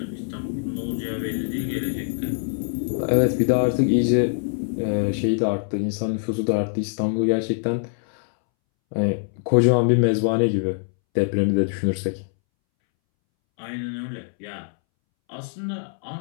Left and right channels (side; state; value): right; silent; 63 dB below the other